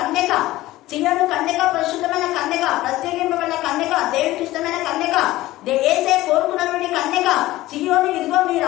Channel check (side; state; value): right; quieter; 16.9 dB